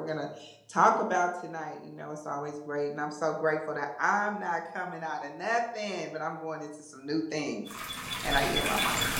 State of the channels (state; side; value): identical; both; correlation 1.00